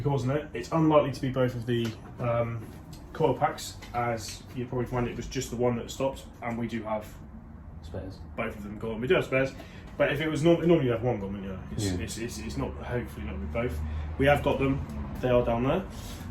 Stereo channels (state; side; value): identical; both; correlation 1.00